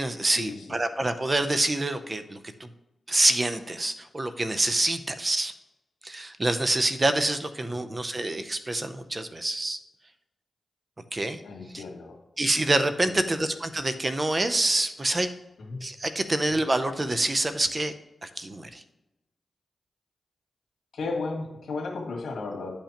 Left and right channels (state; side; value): normal; both; correlation 0.95